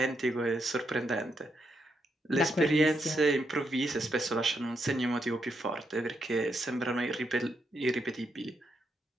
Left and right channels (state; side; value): normal; both; correlation 0.80